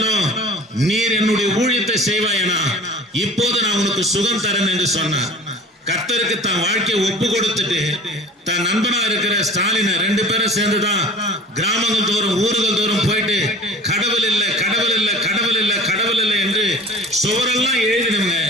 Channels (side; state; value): both; normal; correlation 0.43